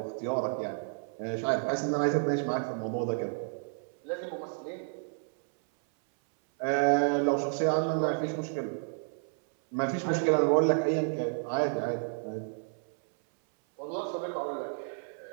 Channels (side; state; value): left; silent; 57 dB below the other